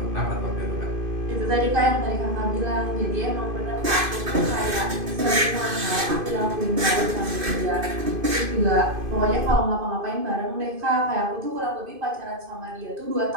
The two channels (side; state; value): left; late; 2.5 ms